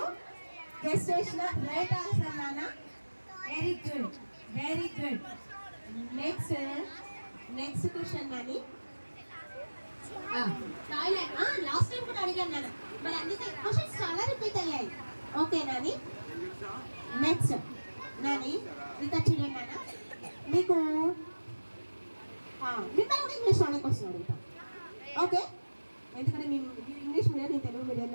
గెస్ట్ చేసిన రైట్ ఆన్సర్ నాన్న. Very good, very good. Next question Nani. Thailand last time కూడా అడిగాను నాన్న. మరి అన్ని క్వశ్చన్స్ చాలా రిపీట్ అయ్యాయి. ఓకే నాని. నెక్స్ట్ నాని ఇంకా చూడండి నాన్న. మీకు మిమ్మల్ని కూడా ఇంగ్లీష్ లోనే క్వశ్చన్ అడుగుతాం. ఓకే, ఎందుకంటే మీరు ఇంగ్లీష్ మీడియం, నేను తెలుగు మీడియం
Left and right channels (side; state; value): both; inverted; correlation -1.00